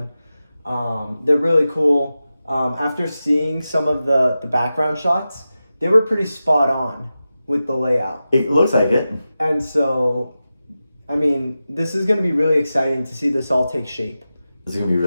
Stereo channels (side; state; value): both; inverted; correlation -0.93